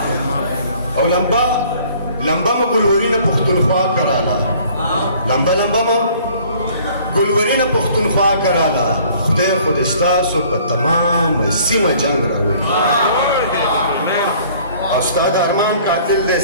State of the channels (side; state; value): both; inverted; correlation -0.55